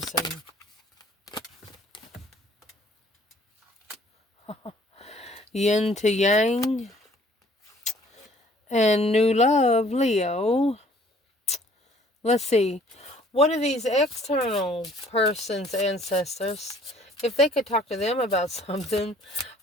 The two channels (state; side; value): normal; both; correlation 0.57